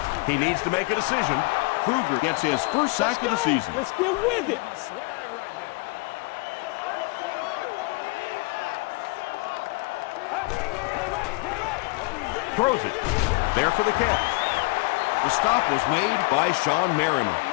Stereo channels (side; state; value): right; quieter; 25.8 dB